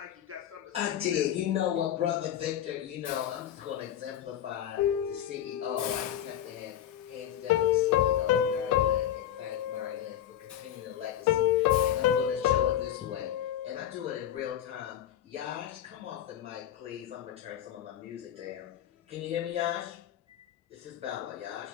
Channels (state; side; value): quieter; right; 10.9 dB